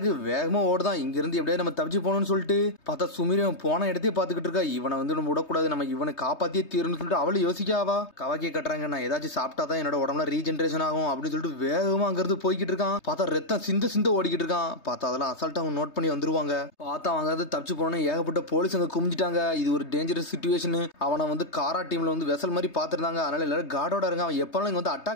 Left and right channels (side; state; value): right; late; 3.2 ms